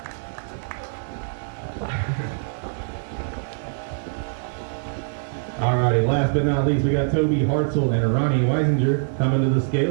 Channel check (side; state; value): left; silent; digital silence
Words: Alrighty, last but not least, we got Toby Hartzell and Ronnie Weisinger coming to the